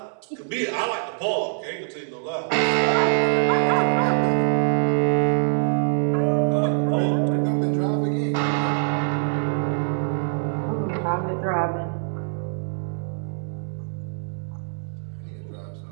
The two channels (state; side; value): silent; left; 63 dB below the other